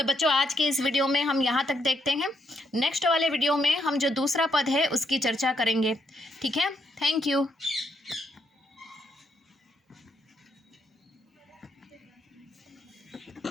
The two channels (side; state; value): both; normal; correlation 0.76